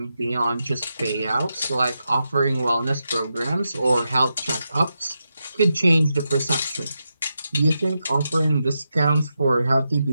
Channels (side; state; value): both; inverted; correlation -0.87